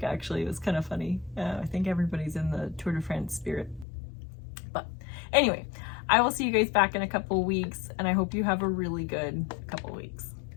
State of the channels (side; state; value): right; drops out; at 3.9 s